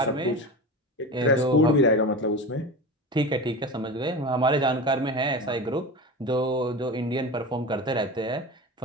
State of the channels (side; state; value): both; normal; correlation 0.28